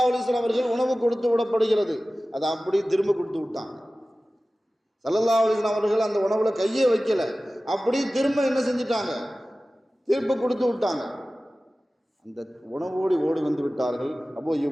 அலைஹி வஸல்லம் அவர்கள் உணவு கொடுத்து விடப்படுகிறது. அதை அப்படி திரும்ப கொடுத்து விட்டாங்க. ஸல்லல்லாஹு அலைஹி வஸல்லம் அவர்கள் அந்த உணவுல கையே வைக்கல, அப்படி திரும்ப என்ன செஞ்சிட்டாங்க, திரும்ப கொடுத்து விட்டாங்க. அந்த உணவோடு ஓடி வந்து விட்டார்கள் அபூ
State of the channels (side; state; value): both; normal; correlation 0.96